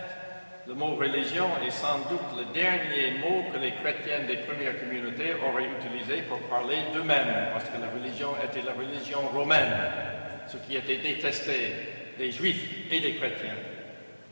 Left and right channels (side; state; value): both; inverted; correlation -1.00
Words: le mot religion est sans doute le dernier mot que les chrétiens des premières communautés auraient utilisé pour parler d'eux-mêmes, parce que la religion était la religion romaine, ce qui était détesté des juifs et des chrétiens.